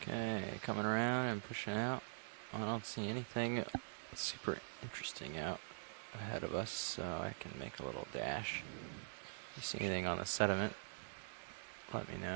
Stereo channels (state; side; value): silent; left; digital silence